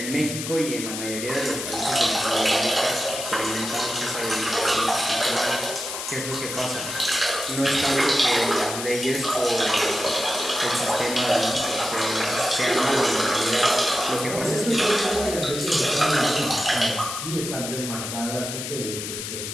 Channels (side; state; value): left; noise; hiss, 6 dB below the sound